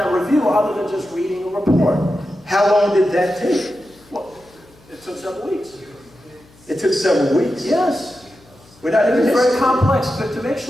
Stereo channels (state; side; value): noise; left; hum, 28 dB below the sound